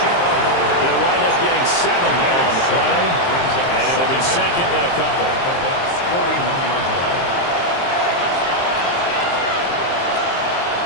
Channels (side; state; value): right; late; 23 ms